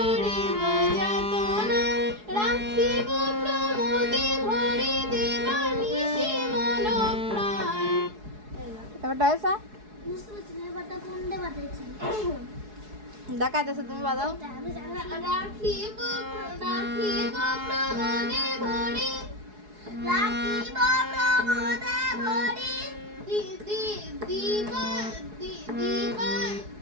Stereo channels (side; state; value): left; late; 4.7 ms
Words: যাতনা রাখিব প্রমোদে ভরি দেবানিশি মন প্রাণ। এবারটা হয়েছে? বুঝতে পারছি না এবারটা কোন দে বাজাইছি। দেখা যাচ্ছে, তুমি বাজাও। আমি জানি না। রাখিব প্রমোদে ভরি রাখিব প্রমোদে ভরি দিবা